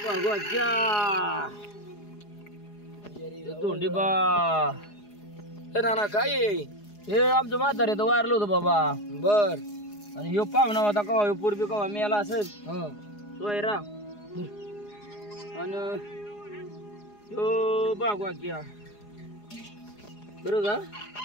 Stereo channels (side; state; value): right; late; 4.8 ms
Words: तर तोंडी बा नाना काय हे आमचं म्हातारे तर वारलं होतं बाबा. बर आणि ह्यो पाहुणा होता कवा, ह्यो पूर्वी कवा मेला असेल सोयरा. आणि ह्यो बागवा किया बरं का.